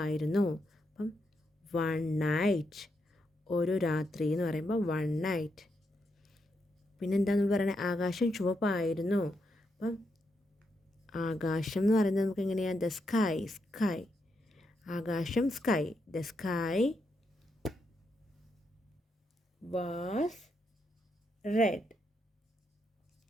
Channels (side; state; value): both; normal; correlation 0.81